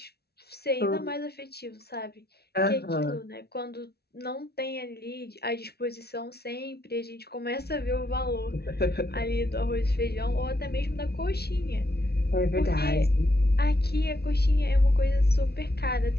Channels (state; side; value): late; right; 0.47 ms